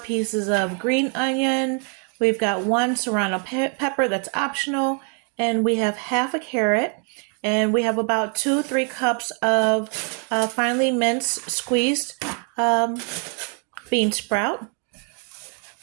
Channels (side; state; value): left; quieter; 39.9 dB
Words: of green onion, we've got 1 serrano pepper that's optional, and we have half a carrot, and we have about 2-3 cups of finely minced, squeezed bean sprout.